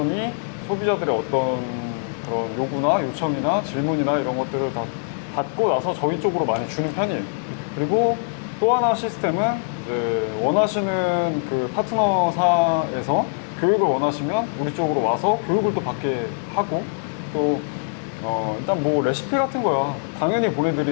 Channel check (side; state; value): right; silent; digital silence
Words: 소비자들의 어떤 그런 요구나 요청이나 질문이나 이런 것들을 다 받고 나서 저희 쪽으로 많이 주는 편이에요. 그리고 또 하나 시스템은 이제 원하시는 그 파트너사에서 교육을 원하시면 우리 쪽으로 와서 교육을 또 받게 하고 또 일단 뭐 레시피 같은 거야 당연히